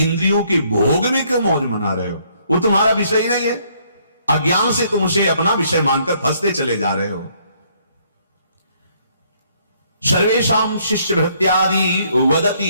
के भोग में क्यों मौज मना रहे हो? वो तुम्हारा विषय ही नहीं है। अज्ञान से तुम उसे अपना विषय मानकर फंसते चले जा रहे हो। सर्वेषां शिष्य भृत्यादि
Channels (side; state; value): both; inverted; correlation -0.67